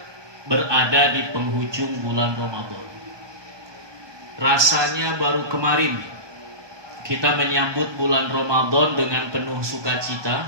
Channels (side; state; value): left; late; 1.2 ms